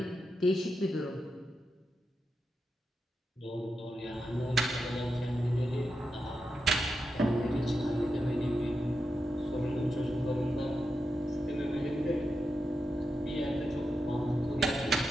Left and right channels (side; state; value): both; normal; correlation 0.88